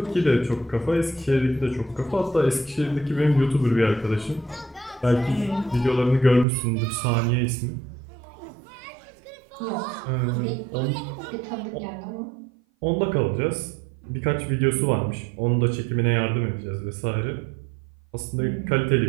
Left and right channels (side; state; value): left; drops out; at 6.5 s